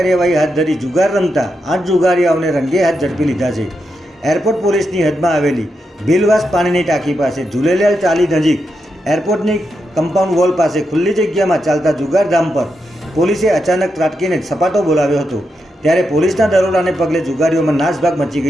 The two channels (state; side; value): normal; both; correlation 0.85